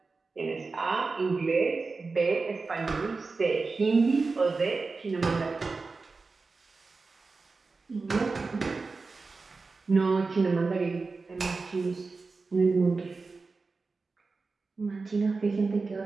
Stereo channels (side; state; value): left; quieter; 4.1 dB